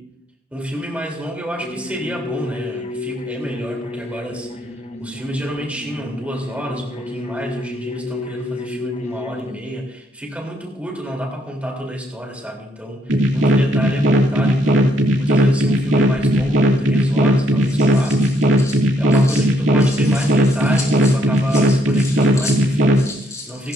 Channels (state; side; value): normal; both; correlation 0.72